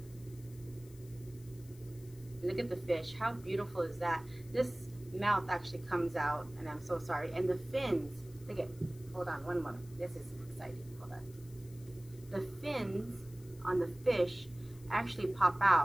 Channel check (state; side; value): noise; left; hiss, 23 dB below the sound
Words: Look at the fish. How beautiful is that? This mouth actually comes out, and I'm so sorry. And the fins, look at, hold on one moment. This is exciting. Hold on. The fins on the fish actually pop